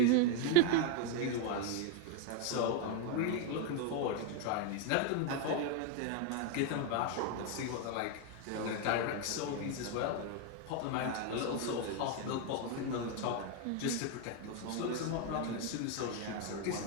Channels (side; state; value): both; different; correlation 0.01